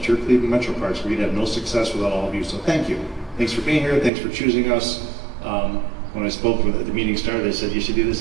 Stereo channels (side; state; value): left; drops out; at 4.1 s